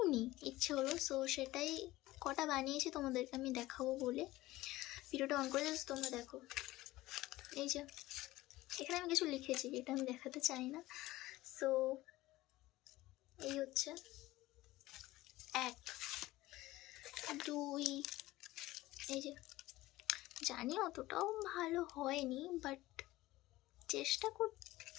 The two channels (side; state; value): right; quieter; 17.7 dB